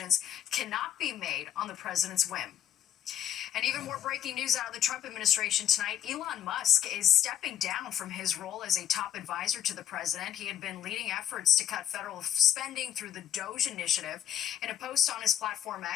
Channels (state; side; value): quieter; right; 10.8 dB